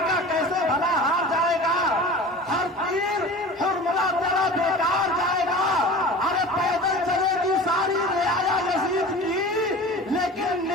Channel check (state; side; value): normal; both; correlation 0.37